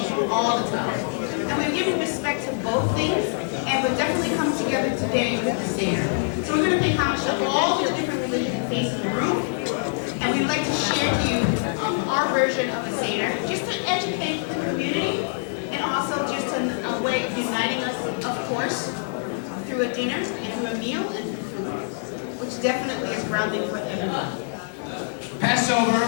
all the time. And we're giving respect to both things, and we're definitely coming together today with the Seder. So we're going to pay homage to all the different religions and faiths in the room, and we'd like to share to you our version of the Seder, just to educate the community, and also just a way of uniting us, of course, through a dinner and through a meal, and which definitely is grounding for everyone. Passover,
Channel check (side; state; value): right; silent; 62 dB below the other